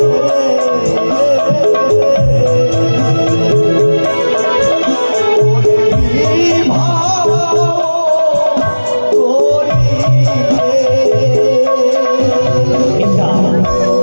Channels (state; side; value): inverted; both; correlation -1.00